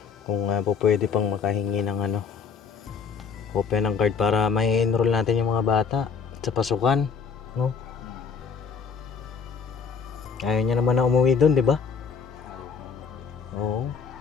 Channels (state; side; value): quieter; right; 6.0 dB